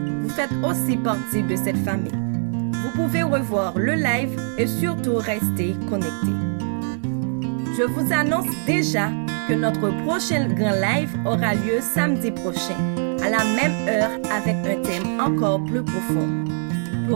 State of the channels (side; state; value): left; silent; 64 dB below the other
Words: vous faites aussi partie de cette famille. Vous pouvez revoir le live et surtout rester connectés. Je vous annonce déjà que notre prochain grand live aura lieu samedi prochain, à la même heure avec un thème encore plus profond